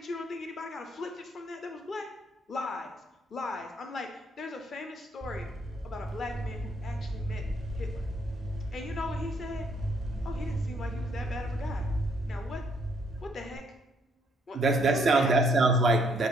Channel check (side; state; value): both; normal; correlation 0.69